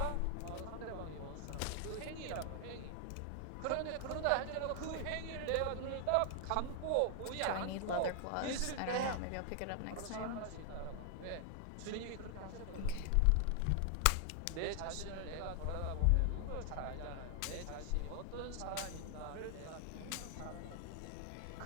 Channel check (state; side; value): different; both; correlation 0.00